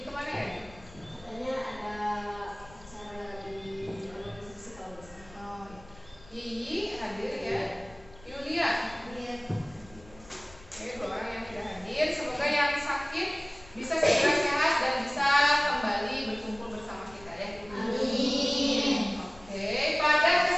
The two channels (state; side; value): noise; left; rumble, 22 dB below the sound